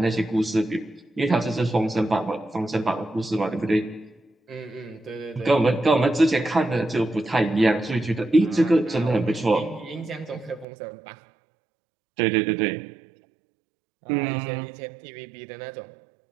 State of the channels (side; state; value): left; drops out; at 10.7 s